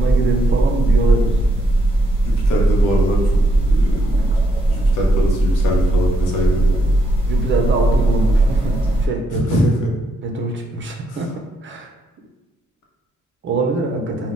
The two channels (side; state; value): both; normal; correlation 0.77